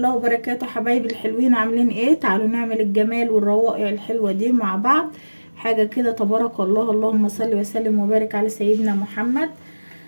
وبركاته. حبايبي الحلوين عاملين ايه؟ تعالوا نعمل الجمال والروائع الحلوة دي مع بعض. حاجة كده تبارك الله. اللهم صل وسلم وبارك على سيدنا محمد.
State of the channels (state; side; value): inverted; both; correlation -1.00